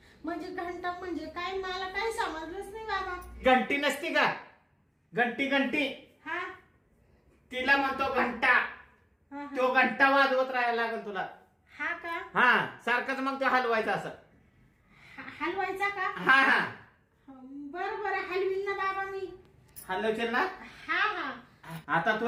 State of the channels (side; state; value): both; identical; correlation 1.00